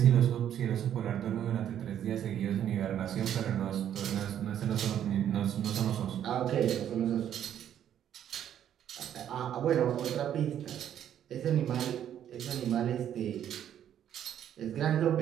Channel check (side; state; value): left; quieter; 10.2 dB